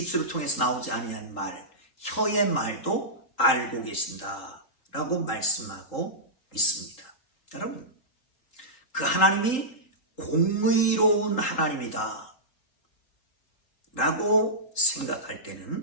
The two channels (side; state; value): right; late; 3.8 ms